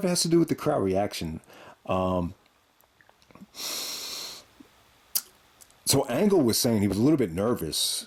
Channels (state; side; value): identical; both; correlation 1.00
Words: it has to do with the crowd reaction. So Angle was saying he was a little bit